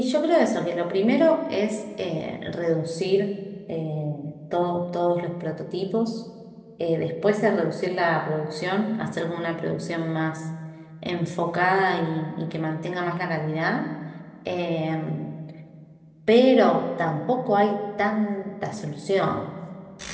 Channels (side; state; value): both; identical; correlation 1.00